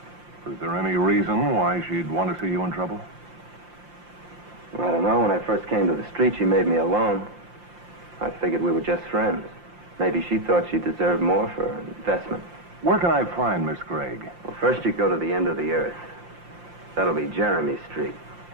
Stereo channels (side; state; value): left; late; 5.7 ms